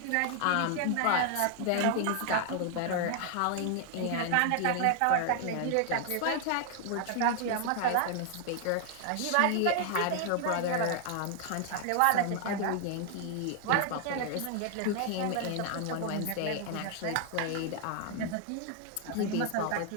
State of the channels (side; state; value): both; different; correlation 0.00